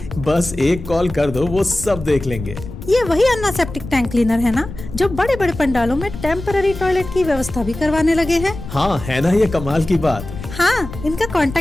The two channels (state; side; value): noise; left; rumble, 11 dB below the sound